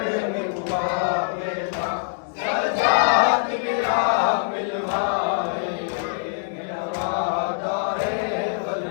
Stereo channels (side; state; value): right; silent; 63 dB below the other